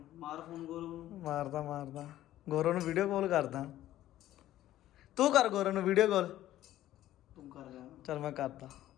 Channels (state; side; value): quieter; right; 13.7 dB